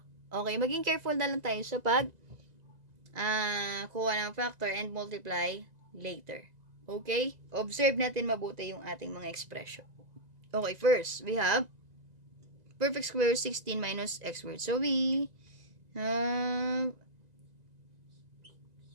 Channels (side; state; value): left; late; 2.0 ms